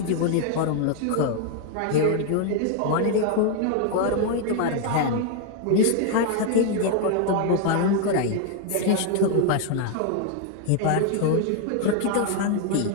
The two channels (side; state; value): both; different; correlation 0.00